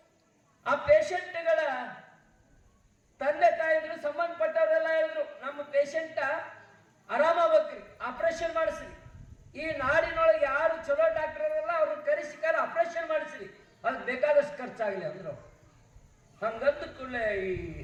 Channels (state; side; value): identical; both; correlation 1.00